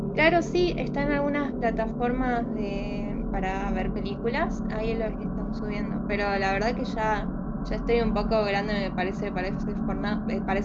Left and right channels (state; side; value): identical; both; correlation 1.00